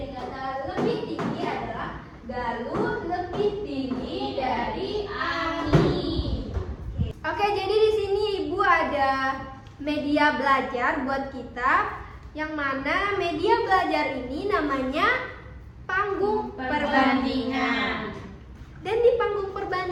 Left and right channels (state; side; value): identical; both; correlation 1.00